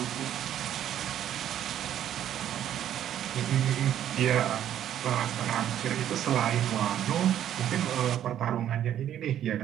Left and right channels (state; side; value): quieter; left; 10.8 dB